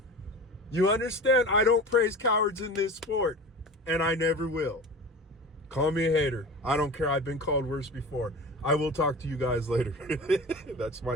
You understand? I don't praise cowards in this sport, and I never will. Call me a hater. I don't care. I've been called worse before. I will talk to you guys later. That's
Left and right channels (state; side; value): normal; both; correlation 0.34